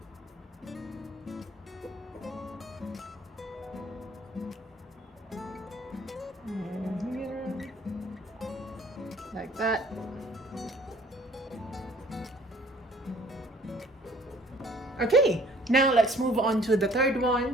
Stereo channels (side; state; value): both; normal; correlation 0.56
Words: And here, like that. Okay, now let's move on to the third